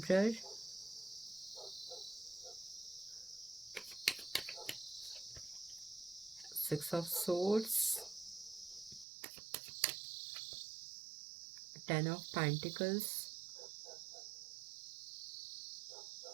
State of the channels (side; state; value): left; drops out; at 9.1 s